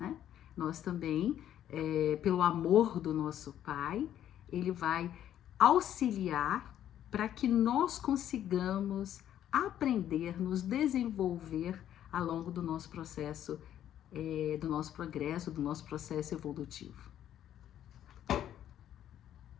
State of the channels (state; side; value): quieter; right; 11.0 dB